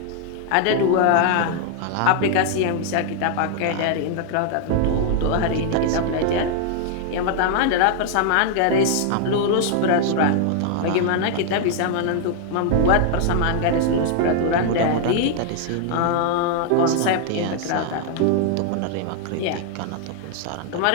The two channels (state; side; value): different; both; correlation 0.00